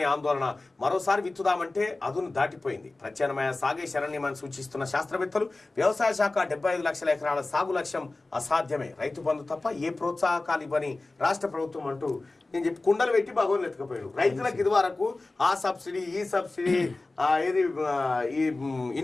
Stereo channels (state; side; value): quieter; right; 3.2 dB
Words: ఆందోళన. మరోసారి విత్తుదామంటే అదును దాటిపోయింది. ప్రత్యామ్నాయ సాగే శరణ్యమని సూచిస్తున్న శాస్త్రవేత్తలు. వ్యవసాయ శాఖ 75 లక్షల ఎకరాల సాగు లక్ష్యం అసాధ్యమే. రైతు బంధు తప్ప ఏ ప్రోత్సాహకాలు ఇవ్వని రాష్ట్ర ప్రభుత్వం అంటూ నేను చెప్పి కుండలు పెట్టి భగవాన్ ఎత్తుకుపోయాడు. రైతులకు ఇది వరకు ఆ సబ్సిడీ, ఈ సబ్సిడీ, ఏది ఈ